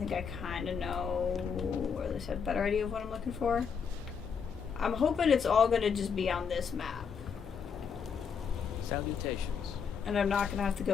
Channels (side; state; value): right; quieter; 6.5 dB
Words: I kind of know, or at least have a better idea of what I'm looking for. I'm hoping it's all going to just be on this map. Salutations. And I'm not going to have to